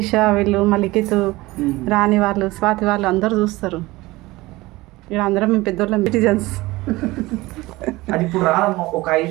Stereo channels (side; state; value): left; quieter; 20.1 dB